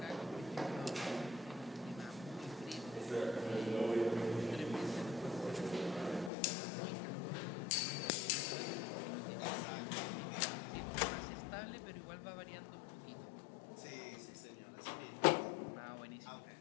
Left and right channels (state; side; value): drops out; right; at 6.3 s